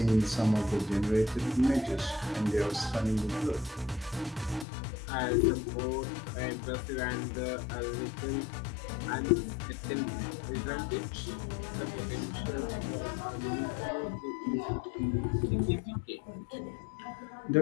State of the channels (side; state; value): right; drops out; at 4.7 s